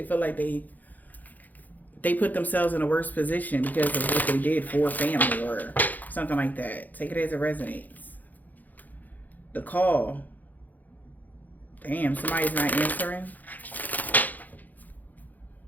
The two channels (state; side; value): late; right; 0.083 ms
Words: feel like they put themselves in a worse position because of what they did for family or something like that. Take it as it resonates. The call. Damn, somebody's not answering.